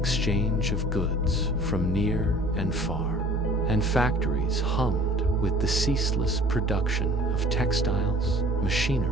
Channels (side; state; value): both; normal; correlation 0.49